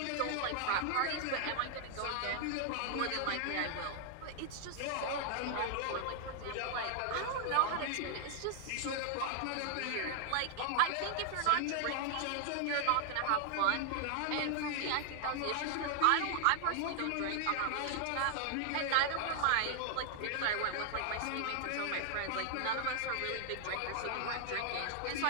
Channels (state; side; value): different; both; correlation 0.00